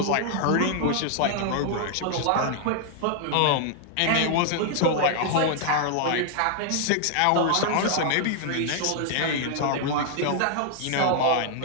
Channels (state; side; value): different; both; correlation 0.00